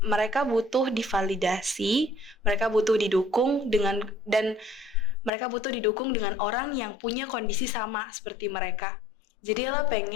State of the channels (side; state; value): right; drops out; at 5.3 s